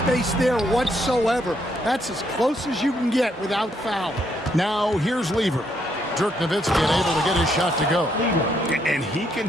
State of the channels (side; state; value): both; normal; correlation 0.74